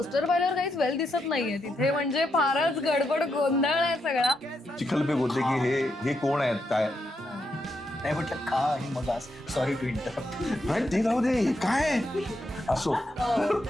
पाहिल्यावर काहीच वेल दिसत नाहीये तिथे. म्हणजे फारच गडबड गोंधळ आहे सगळा. चिखलपे बोलते की हे कोण आहेत काय नाही म्हटलं का आणि मग आज सॉरी टू इंटरप्ट. नाही ते जाऊ दे, हे काय असो.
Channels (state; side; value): normal; both; correlation 0.81